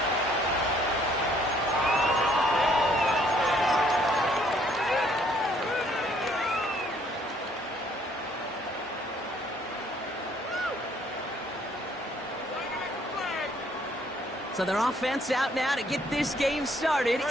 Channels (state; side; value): normal; both; correlation 0.64